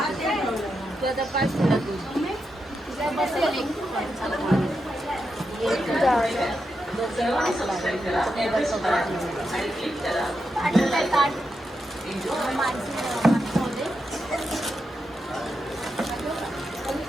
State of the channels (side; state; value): both; normal; correlation 0.86